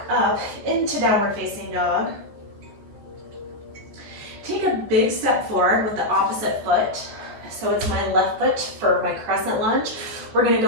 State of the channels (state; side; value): late; left; 14 ms